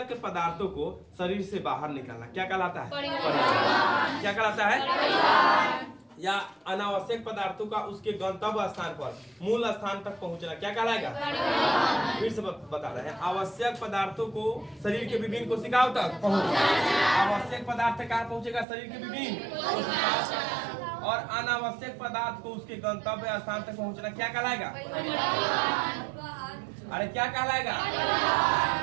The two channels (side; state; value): left; drops out; at 18.7 s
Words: पदार्थों को शरीर से बाहर निकालना क्या कहलाता है, क्या कहलाता है, या अनावश्यक पदार्थों का उसके गंतव्य स्थान पर, मूल स्थान तक पहुंचना क्या कहलाएगा। फिर से बता रहे हैं, आवश्यक पदार्थों को शरीर के विभिन्न कोशिकाओं तक पहुंचना, आवश्यक पदार्थ कहाँ पहुंचेगा, शरीर के विभिन्न कोशिकाओं तक, और अनावश्यक पदार्थ को उसके गंतव्य स्थान तक पहुंचना क्या कहलाएगा, अरे क्या कहलाएगा,